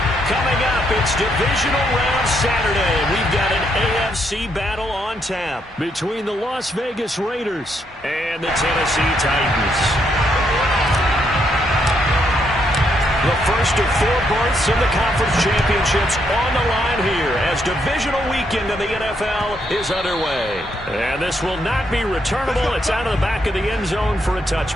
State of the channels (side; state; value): both; normal; correlation 0.76